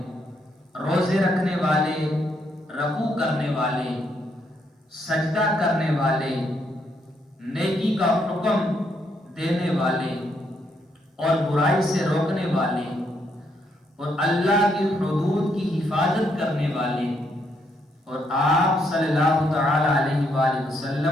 روزے رکھنے والے، رکوع کرنے والے، سجدہ کرنے والے، نیکی کا حکم دینے والے اور برائی سے روکنے والے اور اللہ کی حدود کی حفاظت کرنے والے اور آپ صلی اللہ تعالی علیہ وآلہ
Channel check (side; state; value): both; normal; correlation 0.75